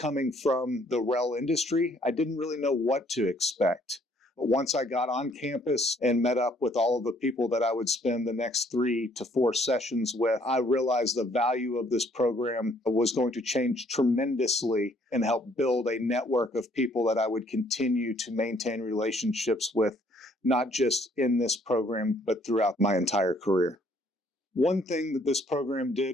from the rail industry, I didn't really know what to expect. But once I got on campus and met up with all of the people that I would spend the next 3 to 4 sessions with, I realized the value of this program was going to change tremendously and help build a network of people that I would continue to maintain relationships with, not just in this program, but throughout my entire career. One thing that this program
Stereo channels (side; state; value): both; normal; correlation 0.64